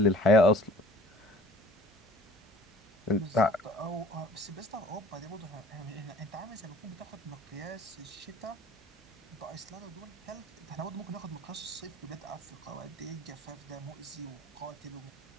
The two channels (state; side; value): normal; both; correlation 0.50